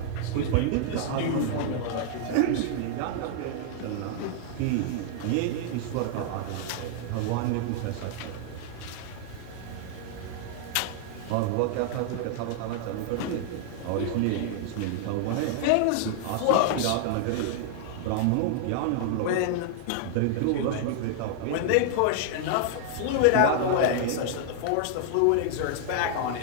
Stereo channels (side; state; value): both; different; correlation -0.01